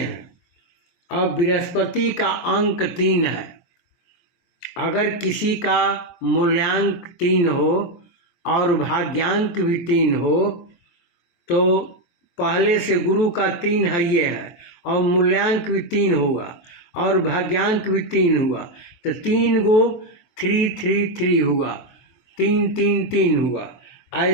अब बृहस्पति का अंक 3 है। अगर किसी का मूल्यांक 3 हो और भाग्यांक भी 3 हो तो पहले से गुरु का 3 है ये है, और मूल्यांक भी 3 होगा और भाग्यांक भी 3 हुआ, तो 3 गो 3 3 3 हुआ, 3 3 3 हुआ।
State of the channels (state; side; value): late; right; 23 ms